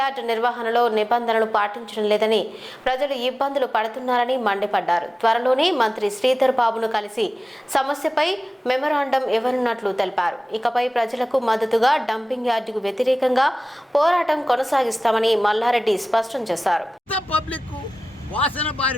నిర్వహణలో నిబంధనలు పాటించడం లేదని ప్రజలు ఇబ్బందులు పడుతున్నారని మండిపడ్డారు. త్వరలోనే మంత్రి శ్రీధర్ బాబును కలిసి సమస్యపై మెమరాండం ఇవ్వనున్నట్లు తెలిపారు. ఇకపై ప్రజలకు మద్దతుగా డంపింగ్ యార్డుకు వ్యతిరేకంగా పోరాటం కొనసాగిస్తామని మల్లారెడ్డి స్పష్టం చేశారు. వాసన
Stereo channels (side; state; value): both; normal; correlation 0.96